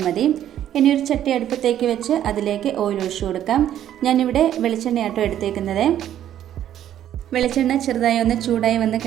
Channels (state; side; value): quieter; left; 11.1 dB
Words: മതി. ഇനി ഒരു ചട്ടി അടുപ്പത്തേക്ക് വെച്ച് അതിലേക്ക് ഓയിൽ ഒഴിച്ചു കൊടുക്കാം. ഞാനിവിടെ വെളിച്ചെണ്ണയാട്ടോ എടുത്തേക്കുന്നത്. വെളിച്ചെണ്ണ ചെറുതായി ഒന്ന് ചൂടായി വന്ന്